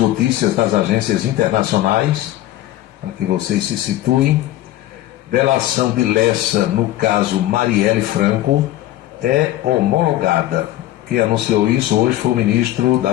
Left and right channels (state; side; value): quieter; right; 14.6 dB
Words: das agências internacionais, para que vocês se situem. Delação de Lessa no caso Marielle Franco é homologada. Quem anunciou isso hoje foi o ministro da